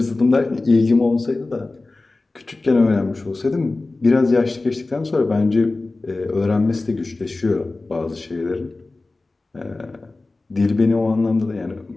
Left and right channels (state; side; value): quieter; right; 3.3 dB